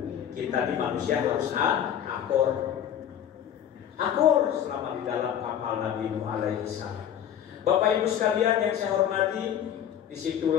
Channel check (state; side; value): quieter; right; 9.7 dB